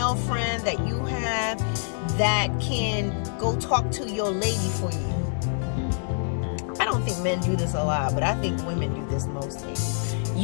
friend that you have that can go talk to your lady for you. I don't think men do this a lot, but I think women do this mostly.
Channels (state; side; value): silent; right; digital silence